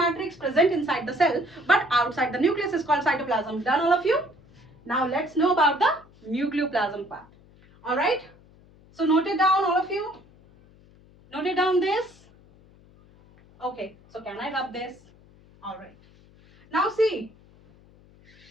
present inside the cell but outside the nucleus is called cytoplasm. Done, all of you? Now let's know about the nucleoplasm part. All right. So note it down, all of you. Note it down this. Okay. So can I rub this? All right. Now see.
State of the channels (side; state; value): left; noise; hum, 27 dB below the sound